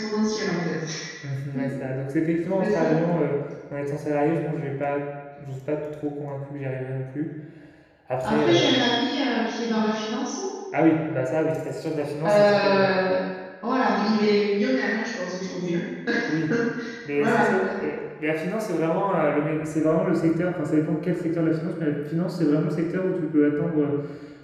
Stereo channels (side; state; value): both; identical; correlation 1.00